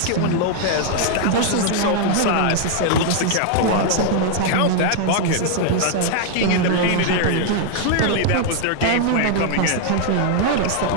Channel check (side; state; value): both; different; correlation 0.00